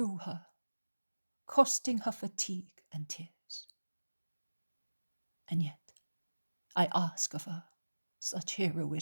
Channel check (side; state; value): both; inverted; correlation -1.00